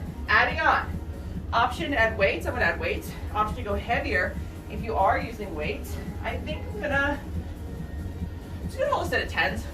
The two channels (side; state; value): both; identical; correlation 1.00